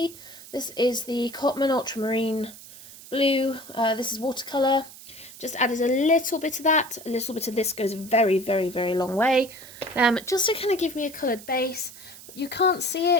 this is the Cotman Ultramarine Blue, this is watercolour, just added a little bit of that, a little bit of this goes a very, very, very long way, just to kind of give me a coloured base. You can't see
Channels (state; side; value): noise; right; hiss, 17 dB below the sound